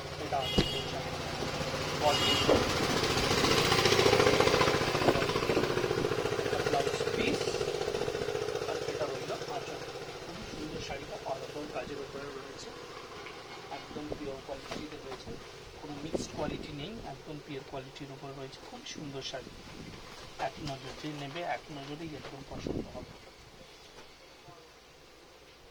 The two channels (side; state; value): both; identical; correlation 1.00